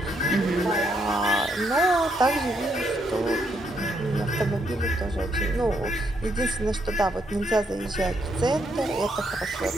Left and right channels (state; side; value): normal; both; correlation 0.75